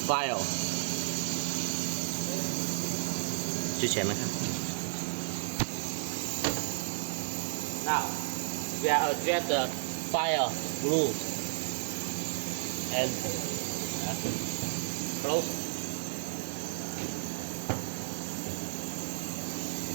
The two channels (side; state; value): left; silent; digital silence